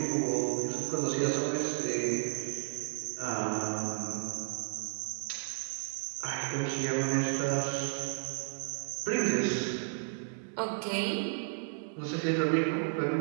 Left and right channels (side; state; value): left; silent; 56 dB below the other